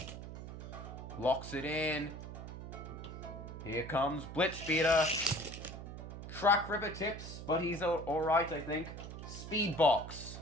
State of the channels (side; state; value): right; noise; hum, 10 dB below the sound